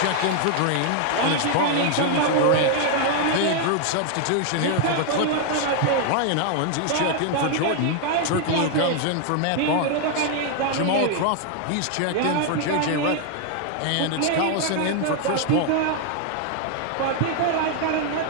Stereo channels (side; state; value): both; different; correlation 0.00